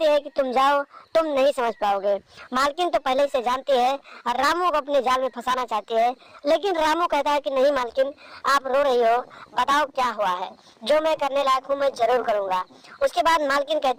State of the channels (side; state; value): both; identical; correlation 1.00